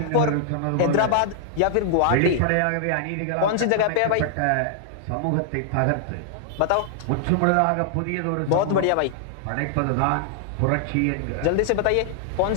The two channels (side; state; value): both; different; correlation -0.01